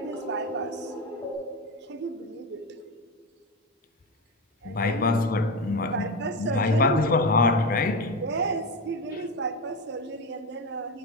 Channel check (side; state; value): both; normal; correlation 0.18